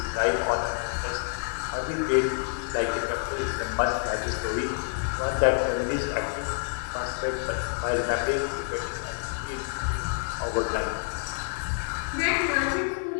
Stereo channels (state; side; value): silent; right; 59 dB below the other